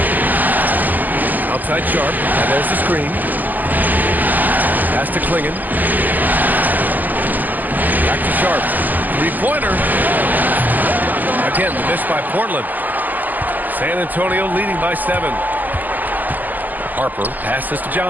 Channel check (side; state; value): left; late; 0.084 ms